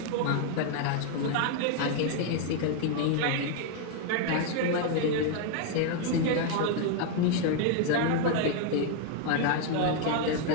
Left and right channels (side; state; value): both; different; correlation 0.00